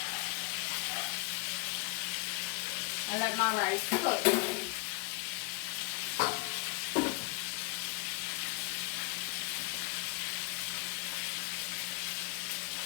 And let my rice cook.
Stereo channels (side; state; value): right; quieter; 26.8 dB